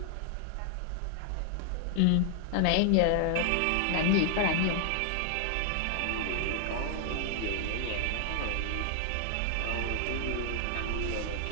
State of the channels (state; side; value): different; both; correlation 0.00